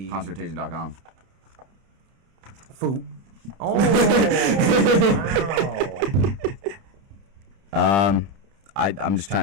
Concertation.com. Food. Oh, wow. I'm just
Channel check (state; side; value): late; left; 30 ms